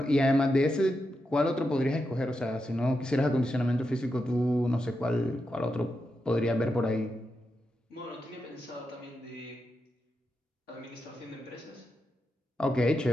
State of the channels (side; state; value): both; normal; correlation 0.87